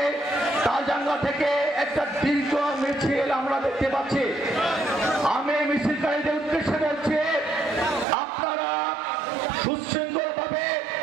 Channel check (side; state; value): left; drops out; at 8.1 s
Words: তালজাঙ্গা থেকে একটা দীর্ঘ মিছিল আমরা দেখতে পাচ্ছি। আমি মিছিলকারীদের উদ্দেশ্যে বলছি, আপনারা সুশৃঙ্খল ভাবে